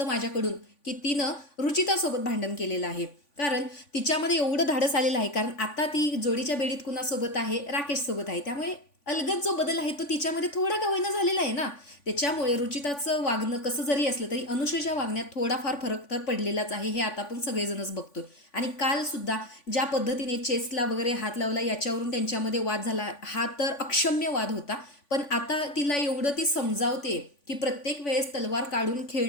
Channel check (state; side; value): late; right; 3.5 ms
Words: माझ्याकडून की तिनं रुचितासोबत भांडण केलेलं आहे. कारण तिच्यामध्ये एवढं धाडस आलेलं आहे, कारण आता ती जोडीच्या बेडीत कुणासोबत आहे, राकेश सोबत आहे. त्यामुळे अलगद जो बदल आहे तो तिच्यामध्ये थोडा का होईना झालेला आहे ना. त्याच्यामुळे रुचिताचं वागणं कसं जरी असलं तरी अनुश्रीच्या वागण्यात थोडाफार फरक तर पडलेलाच आहे, हे आता आपण सगळेजणच बघतोय. आणि काल सुद्धा ज्या पद्धतीने चेसला वगैरे हात लावला याच्यावरून त्यांच्यामध्ये वाद झाला, हा तर अक्षम्य वाद होता. पण आता तिला एवढं ती समजावते की प्रत्येक वेळेस तलवार काढून